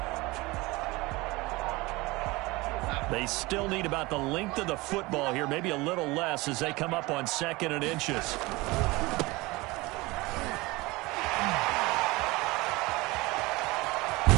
They still need about the length of the football here, maybe a little less as they come up on second and inches.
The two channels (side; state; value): left; quieter; 22.4 dB